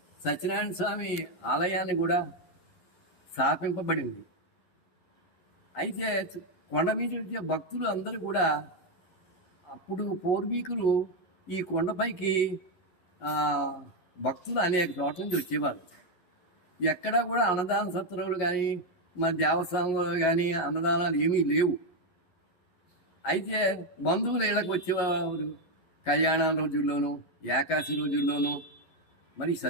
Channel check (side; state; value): right; late; 11 ms